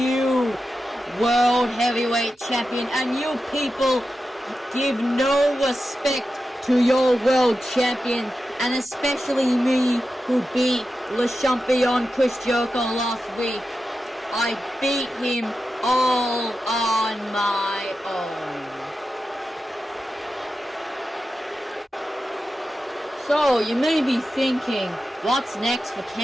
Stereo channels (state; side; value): normal; both; correlation 0.91